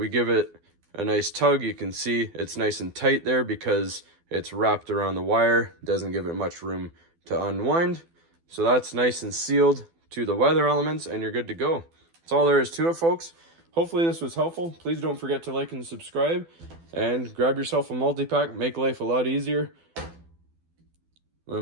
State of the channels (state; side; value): late; left; 12 ms